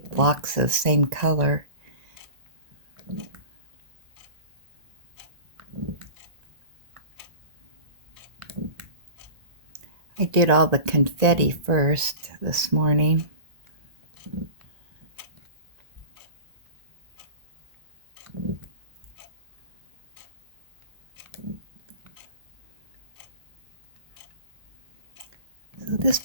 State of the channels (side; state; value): left; late; 1.9 ms